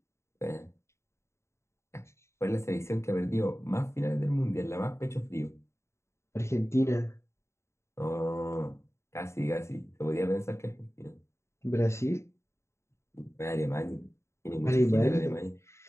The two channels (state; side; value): late; right; 0.13 ms